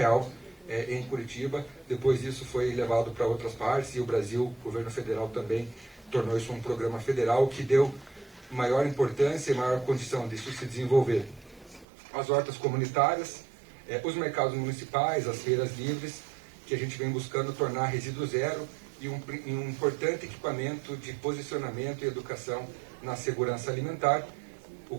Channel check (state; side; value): drops out; left; at 11.9 s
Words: em Curitiba. Depois isso foi levado para outras partes e o Brasil, o governo federal também tornou isso um programa federal que deu maior importância e maior condição disso se desenvolver. As hortas comunitárias, os mercados municipais, as feiras livres, que a gente vem buscando tornar resíduo zero e um importante equipamento de posicionamento e educação na segurança alimentar, o